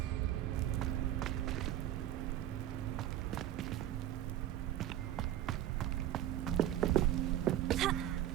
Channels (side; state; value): left; quieter; 12.6 dB